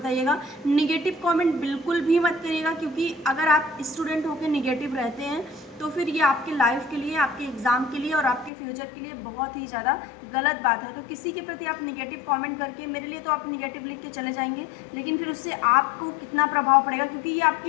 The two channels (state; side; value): drops out; right; at 8.5 s